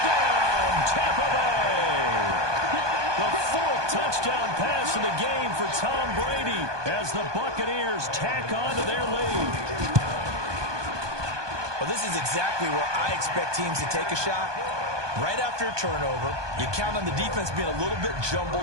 Tampa Bay! The fourth touchdown pass of the game for Tom Brady as the Buccaneers tack on to their lead. Well, this is exactly where I expect teams to take a shot. Right after a turnover, you count on the defense being a little bit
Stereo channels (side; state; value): left; late; 1.2 ms